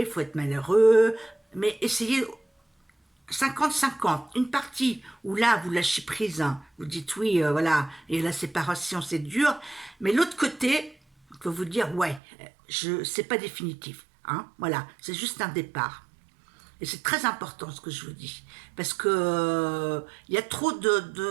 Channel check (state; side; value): drops out; left; at 12.2 s